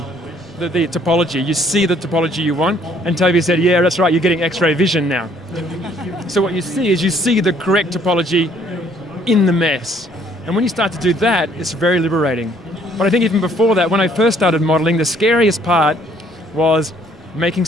the topology. You see the topology you want. And Toby said, yeah, that's right, you're getting X-ray vision now. So what you see is you see the correct topology in the mesh. And when you start to do that, it's very liberating. But I think even before that, when I first started modeling, the scariest part was making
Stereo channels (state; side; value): normal; both; correlation 0.63